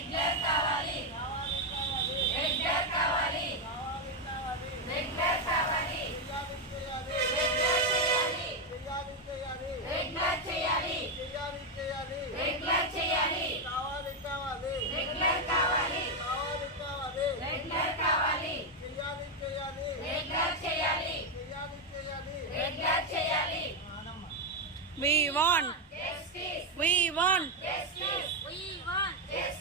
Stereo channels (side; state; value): both; normal; correlation 0.04